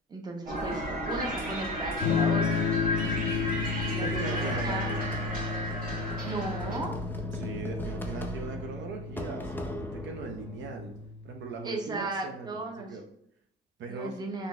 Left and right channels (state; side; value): normal; both; correlation 0.30